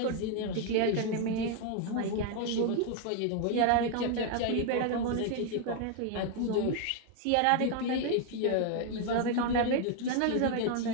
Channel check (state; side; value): different; both; correlation 0.00